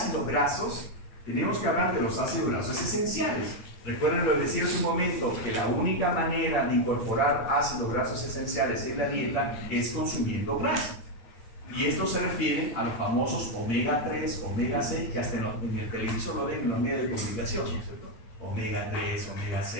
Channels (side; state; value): right; late; 9.1 ms